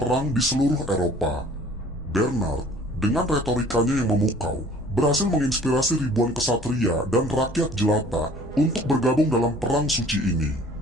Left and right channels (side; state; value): both; normal; correlation 0.51